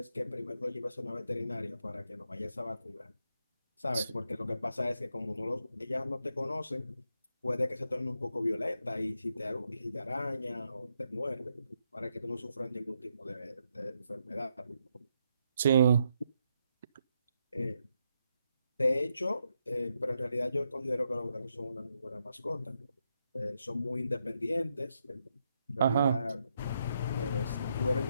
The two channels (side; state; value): both; inverted; correlation -0.80